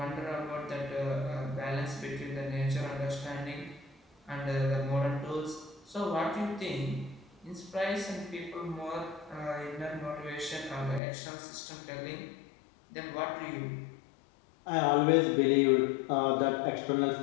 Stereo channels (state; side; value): drops out; right; at 11.0 s